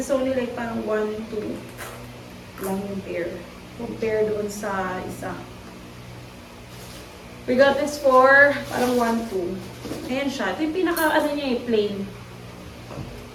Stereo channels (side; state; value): both; identical; correlation 1.00